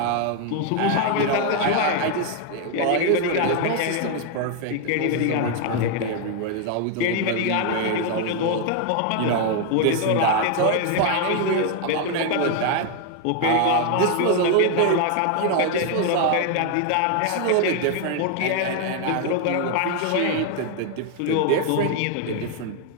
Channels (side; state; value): both; different; correlation 0.01